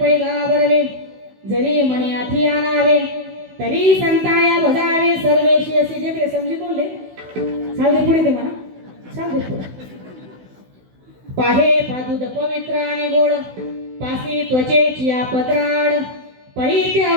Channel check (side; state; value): left; late; 16 ms